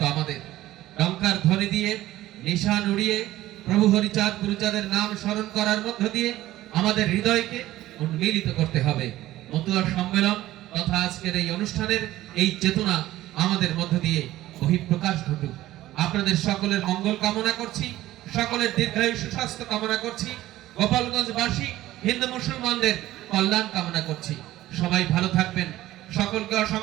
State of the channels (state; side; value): quieter; left; 15.4 dB